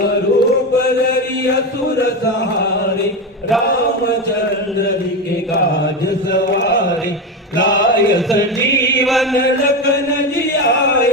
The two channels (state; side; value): normal; both; correlation 0.17